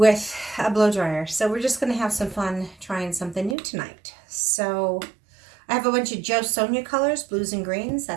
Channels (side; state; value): left; drops out; at 3.6 s